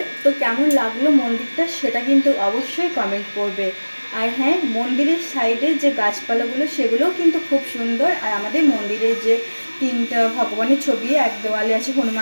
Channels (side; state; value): both; inverted; correlation -1.00